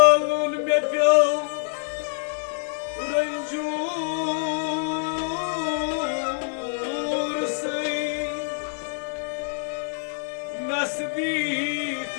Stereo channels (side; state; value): right; silent; digital silence